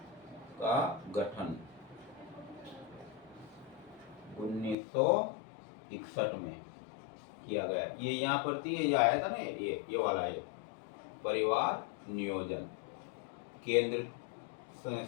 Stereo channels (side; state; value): right; drops out; at 4.8 s